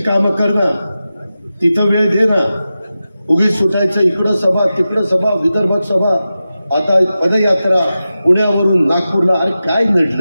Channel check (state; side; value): inverted; both; correlation -0.93